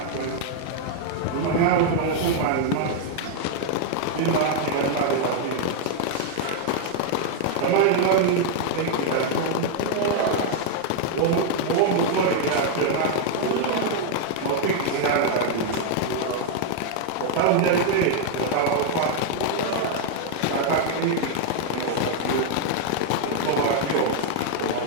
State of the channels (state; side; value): different; both; correlation 0.00